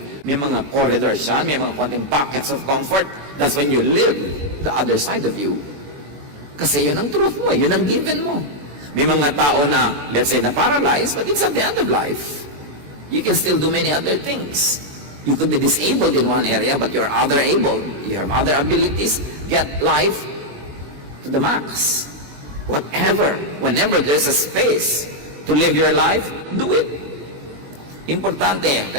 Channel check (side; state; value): left; late; 21 ms